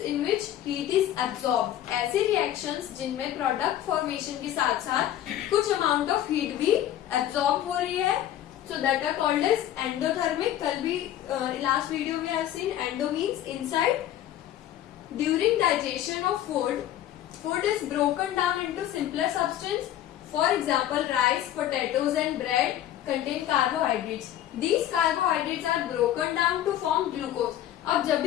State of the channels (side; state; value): right; quieter; 12.1 dB